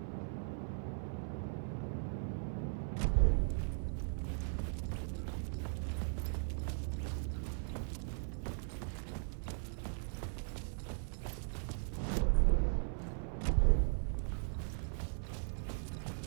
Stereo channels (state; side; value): silent; left; 52 dB below the other